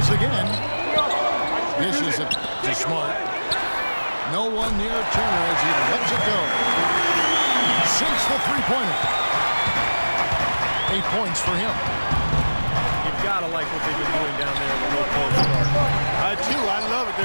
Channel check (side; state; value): both; inverted; correlation -1.00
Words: again. Dishes it to Smart. No one near Turner as he lets it go. Sinks the three-pointer. 8 points for him. You've got to like what they've been doing down there in the low post. I do. I love it.